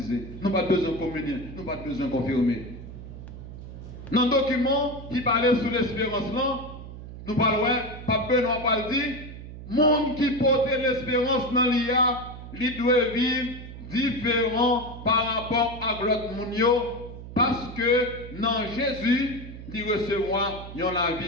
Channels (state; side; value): noise; right; hum, 12 dB below the sound